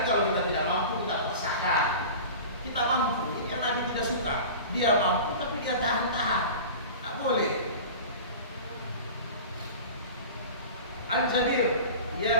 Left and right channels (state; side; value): inverted; both; correlation -0.36